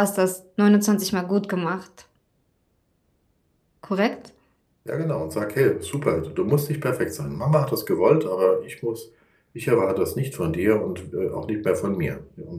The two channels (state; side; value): identical; both; correlation 1.00